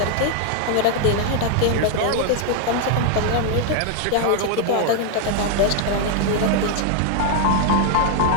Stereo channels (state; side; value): different; both; correlation 0.00